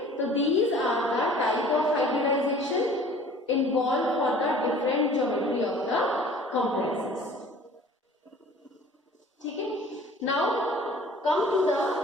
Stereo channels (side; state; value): both; normal; correlation 0.48